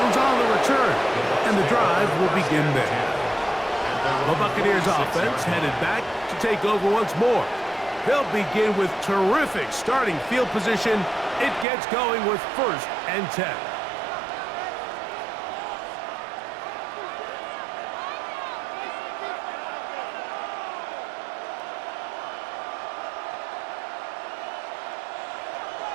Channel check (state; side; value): drops out; left; at 11.7 s